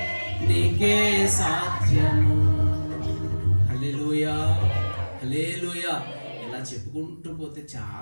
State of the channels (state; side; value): inverted; both; correlation -1.00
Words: నీకే సాధ్యము. హల్లెలూయా హల్లెలూయా. ఇలా చెప్పుకుంటూ పోతే